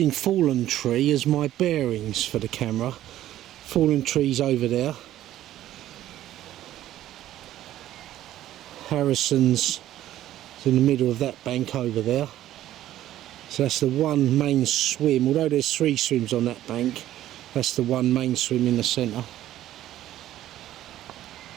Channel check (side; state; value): left; quieter; 13.2 dB